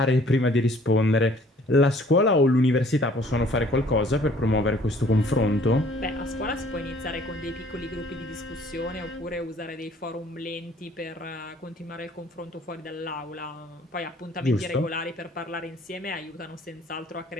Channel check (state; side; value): normal; both; correlation 0.57